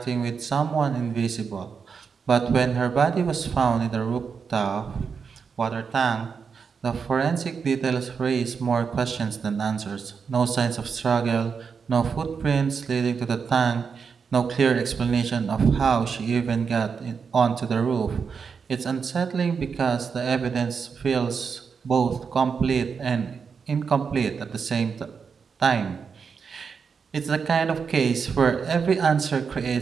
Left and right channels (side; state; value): left; quieter; 5.9 dB